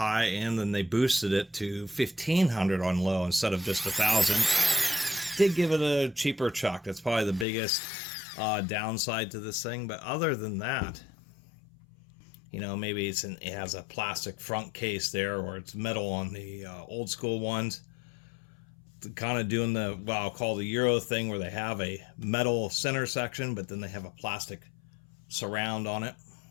and then they boosted it to 1,500 on low instead of just 1,000. Did give it a cheaper chuck. That's probably the biggest downside to this thing. But other than that, you know, maybe it has a plastic front case there, or it's metal on the old school ones. Kind of doing the, well, I'll call the Euro thing, where they have a metal center section, but then they have a plastic surround on it.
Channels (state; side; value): drops out; right; at 7.5 s